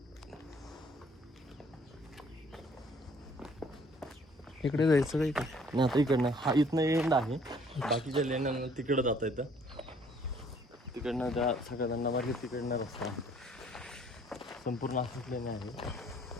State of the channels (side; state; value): both; normal; correlation 0.59